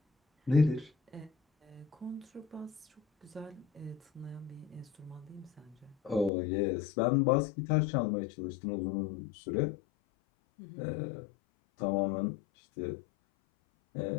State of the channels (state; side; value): drops out; right; at 6.3 s